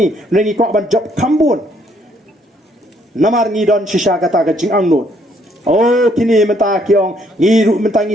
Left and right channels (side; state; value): both; normal; correlation 0.68